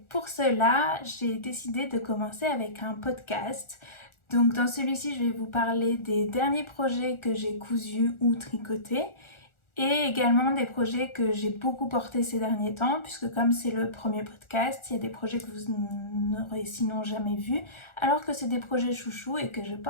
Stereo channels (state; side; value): late; right; 1.4 ms